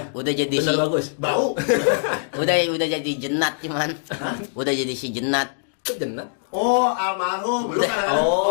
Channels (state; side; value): silent; right; digital silence